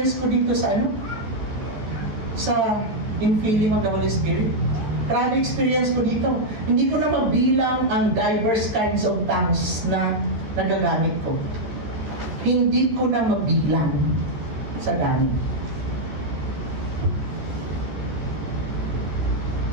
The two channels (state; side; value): late; left; 14 ms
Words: ko dito sa sa infilling of the Holy Spirit. Grabe experience ko dito. Hindi ko na mabilang ang diverse kinds of tongues na nagagamit ko. Hindi ko na mabilang sa gamit.